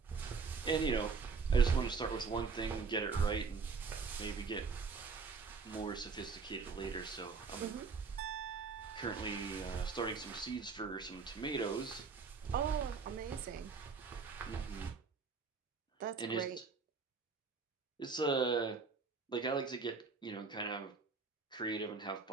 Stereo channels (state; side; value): quieter; left; 4.9 dB